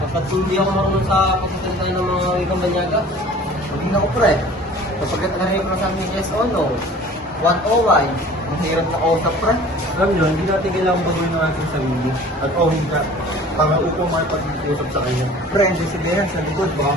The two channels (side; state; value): both; normal; correlation 0.46